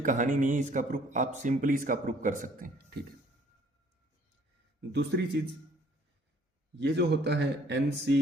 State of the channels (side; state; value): both; normal; correlation 0.60